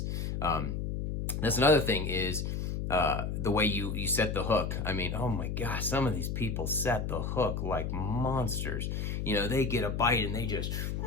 That's another thing is the way you set the hook. I mean, oh my gosh, some of these people set the hook like monsters. They get a bite and they just,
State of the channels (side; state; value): left; noise; hum, 2 dB below the sound